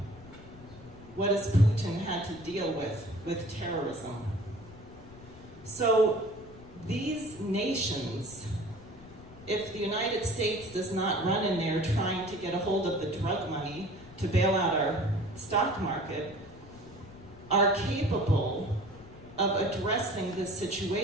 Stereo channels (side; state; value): left; noise; rumble, 20 dB below the sound